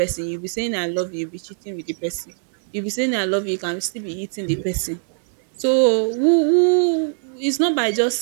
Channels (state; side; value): silent; left; digital silence